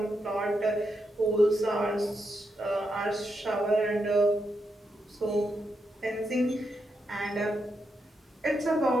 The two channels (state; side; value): normal; both; correlation 0.83